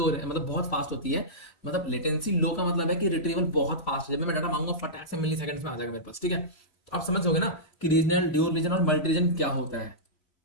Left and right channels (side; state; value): right; late; 3.1 ms